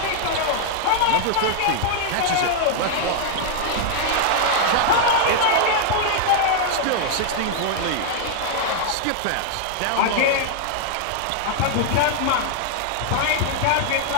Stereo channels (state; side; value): different; both; correlation -0.01